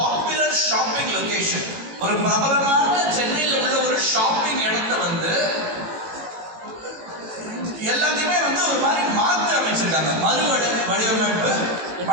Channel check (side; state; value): left; late; 18 ms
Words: ஷாப்பிங் லொகேஷன், ஒரு பிரபலமான சென்னையில் உள்ள ஒரு ஷாப்பிங் இடத்தை வந்து எல்லாத்தையுமே வந்து ஒரு மாதிரி மாற்றி அமைச்சிருக்காங்க, வடிவமைப்பு